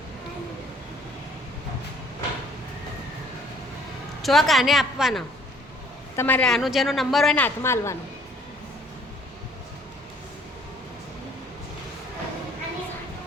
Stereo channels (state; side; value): normal; both; correlation 0.58